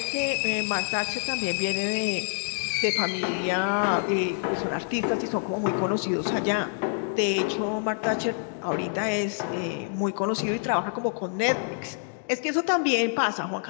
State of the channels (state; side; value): silent; right; 60 dB below the other